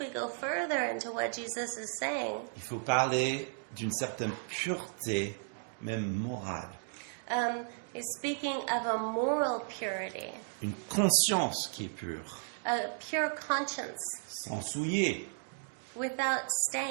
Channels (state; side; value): silent; left; digital silence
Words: go further into what Jesus is saying, il faut parler d'une certaine pureté, même morale. he's speaking of a moral purity, Une conscience qui est pure, a pure conscience, sans souiller. without